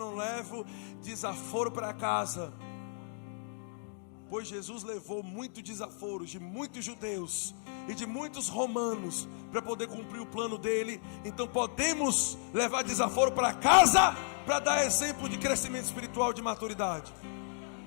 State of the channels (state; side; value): silent; right; digital silence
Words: levo desaforo para casa. pois Jesus levou muitos desaforos de muitos judeus e de muitos romanos para poder cumprir o plano dele. Então podemos levar desaforo para casa para dar exemplo de crescimento espiritual, de maturidade.